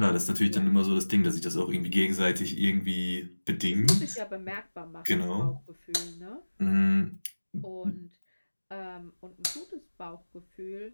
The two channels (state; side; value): inverted; both; correlation -1.00